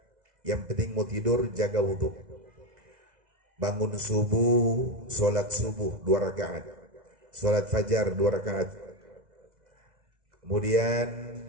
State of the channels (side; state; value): left; late; 2.0 ms